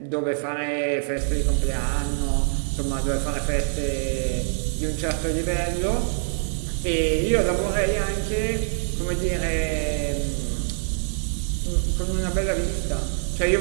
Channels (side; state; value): left; silent; digital silence